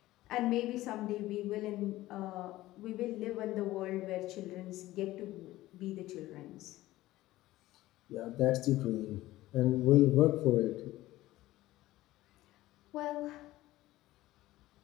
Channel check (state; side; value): quieter; right; 16.6 dB